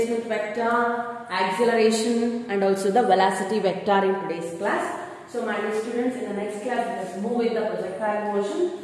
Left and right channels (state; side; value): identical; both; correlation 1.00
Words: vector, acceleration and also the velocity vector in today's class. So my dear students, in the next class let us move with the projectile